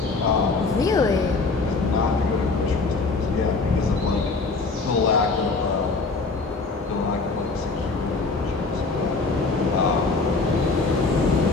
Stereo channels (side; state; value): right; quieter; 3.9 dB